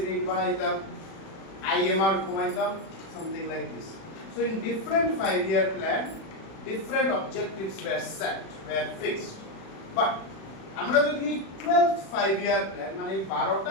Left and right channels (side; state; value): right; late; 36 ms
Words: রেট বাড়াইতাম আইএমআর কমাইতাম something like this. So in different 5-year plan different objectives were set, were fixed. But আমরা যদি 12th 5-year plan মানে